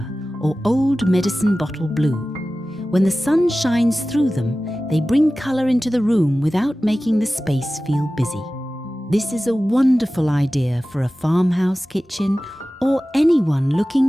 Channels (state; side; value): normal; both; correlation 0.96